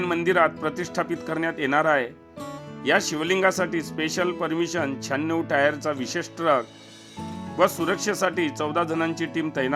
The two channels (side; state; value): both; identical; correlation 1.00